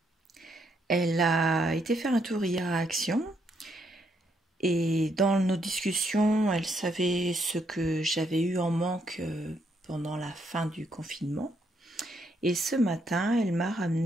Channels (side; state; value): both; normal; correlation 0.74